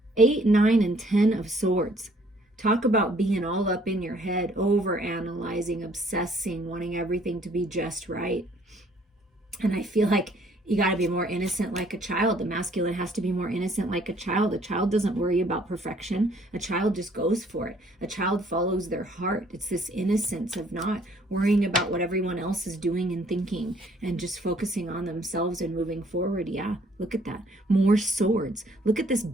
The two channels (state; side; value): normal; both; correlation 0.62